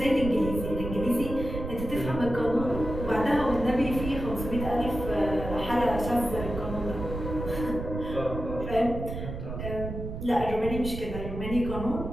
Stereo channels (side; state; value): right; noise; rumble, 7 dB below the sound